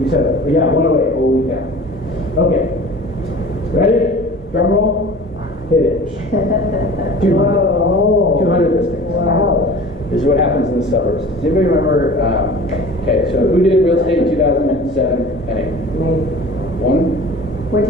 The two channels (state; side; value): normal; both; correlation 0.41